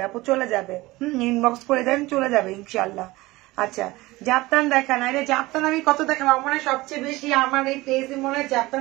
আপু চলে যাবে। ইনবক্স করে দেন, চলে যাবে ইনশাল্লাহ। আচ্ছা, জাপান দেখা না, এটা জাপান আমি কত দেখাবো? আমার মনে হয় সবচেয়ে বেশি আমার এই পেজে মনে হয়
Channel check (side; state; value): left; quieter; 20.0 dB